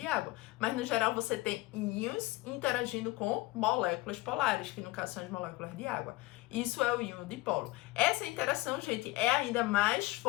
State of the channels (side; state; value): right; quieter; 20.5 dB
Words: água. Mas, no geral, você tem íons interagindo com moléculas polares, que no caso são as moléculas de água. Isso é o íon-dipolo. Essa interação, gente, é ainda mais